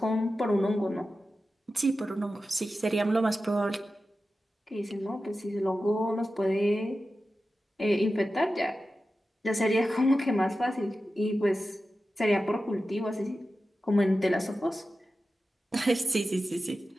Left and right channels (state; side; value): normal; both; correlation 0.93